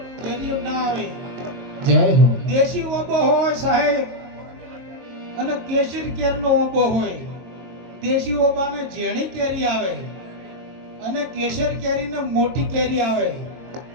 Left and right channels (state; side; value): late; left; 23 ms